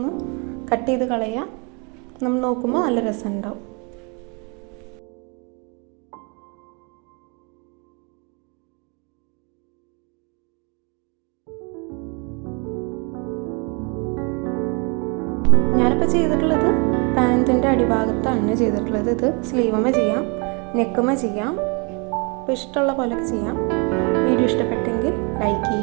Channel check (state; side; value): quieter; left; 33.0 dB